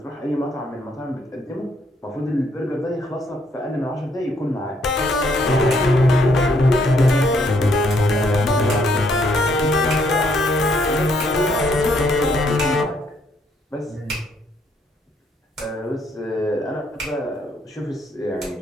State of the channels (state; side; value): normal; both; correlation 0.70